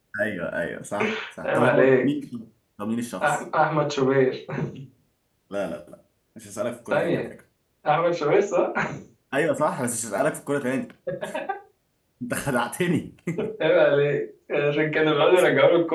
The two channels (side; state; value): both; identical; correlation 1.00